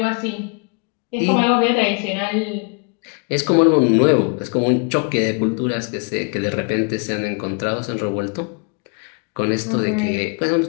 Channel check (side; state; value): right; quieter; 36.0 dB